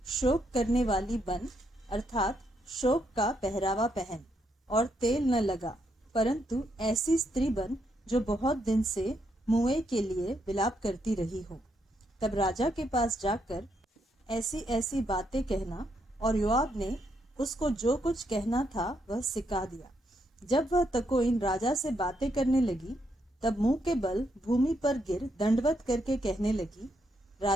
शोक करने वाली बन, अर्थात शोक का पहरावा पहन और तेल न लगा, परंतु ऐसी स्त्री बन जो बहुत दिन से मुए के लिए विलाप करती रही हो। तब राजा के पास जाकर ऐसी ऐसी बातें कहना, और योआब ने उसको जो कुछ कहना था वह सिखा दिया। जब वह तकोइन राजा से बातें करने लगी, तब मुंह के बल भूमि पर गिर दंडवत करके कहने लगी,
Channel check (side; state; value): both; normal; correlation 0.77